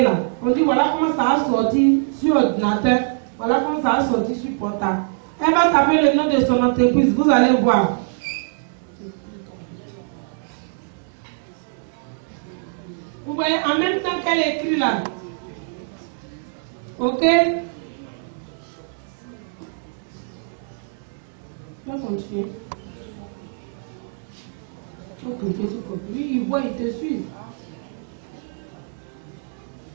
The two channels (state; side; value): silent; left; 63 dB below the other